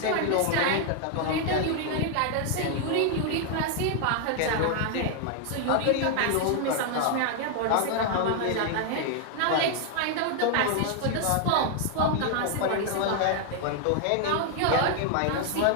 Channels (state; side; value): different; both; correlation 0.00